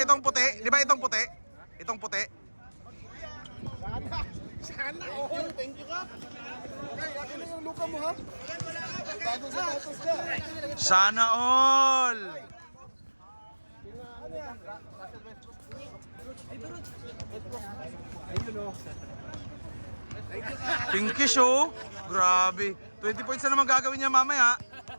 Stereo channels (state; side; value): inverted; both; correlation -1.00